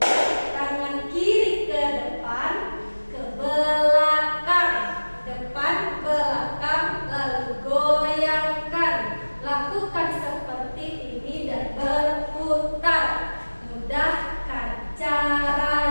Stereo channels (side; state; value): both; inverted; correlation -1.00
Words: Tangan kiri ke depan, ke belakang, depan, belakang, lalu goyangkan. Lakukan seperti ini dan berputar. Mudahkan